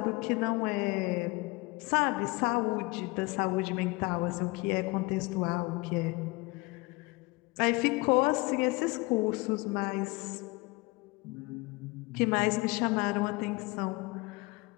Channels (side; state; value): right; quieter; 24.8 dB